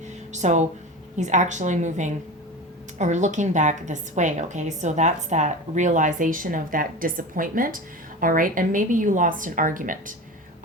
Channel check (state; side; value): normal; both; correlation 0.29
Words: so he's actually moving or looking back this way, okay? So that's that realization of that disappointment, all right? And maybe you lost an argument,